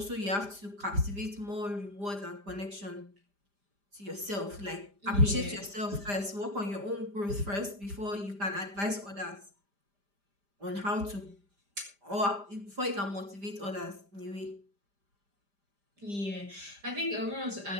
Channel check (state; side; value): late; left; 5.0 ms